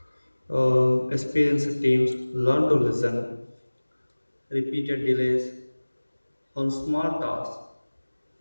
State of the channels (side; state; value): both; inverted; correlation -1.00